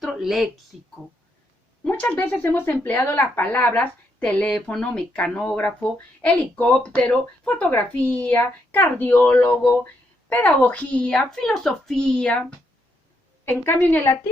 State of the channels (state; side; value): normal; both; correlation 0.77